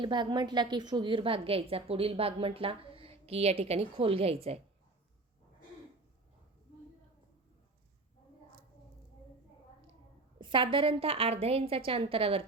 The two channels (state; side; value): quieter; left; 3.1 dB